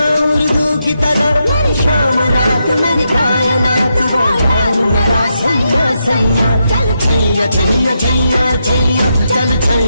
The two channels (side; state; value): both; inverted; correlation -0.83